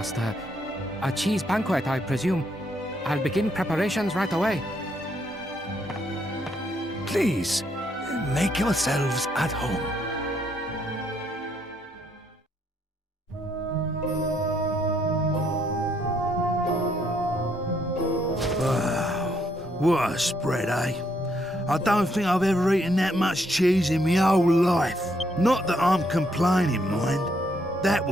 A cheese banquet, I presume. I'll begin preparations right away. Please, make yourselves at home. Wow, what a spread, eh? I don't think I've ever eaten that much cheese in my whole life. Not that I'm complaining, mind. That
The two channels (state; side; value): normal; both; correlation 0.73